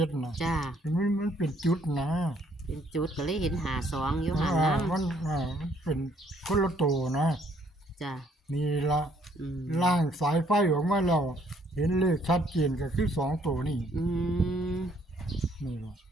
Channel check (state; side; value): normal; both; correlation 0.66